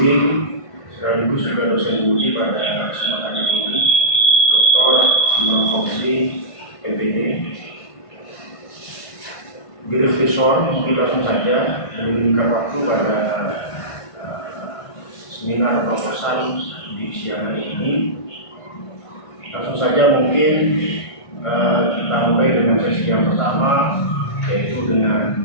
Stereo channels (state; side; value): late; right; 1.5 ms